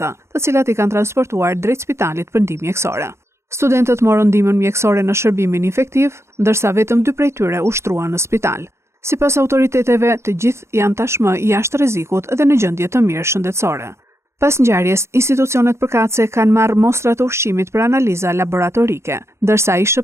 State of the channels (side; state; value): left; late; 0.13 ms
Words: të cilat i kanë transportuar drejt spitalit për ndihmë mjekësore. Studentët morën ndihmën mjekësore në shërbimin infektiv, ndërsa vetëm 2 prej tyre u shtruan në spital. Sipas autoriteteve, të gjithë janë tashmë jashtë rrezikut dhe në gjendje të mirë shëndetësore. Pas ngjarjes, institucionet përkatëse kanë marrë mostra të ushqimit për analiza laboratorike, ndërsa